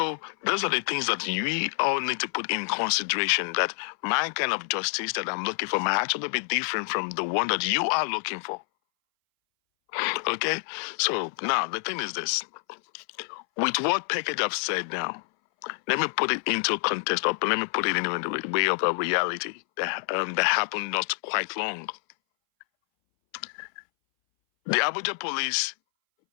those are the things that we all need to put in consideration, that my kind of justice that I'm looking for might actually be different from the one that you are looking for. Okay? So now the thing is this. With what package I've said now, let me put it into context, or let me put it in the way of a reality that happened not quite long. The Abuja police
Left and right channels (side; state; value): right; silent; 60 dB below the other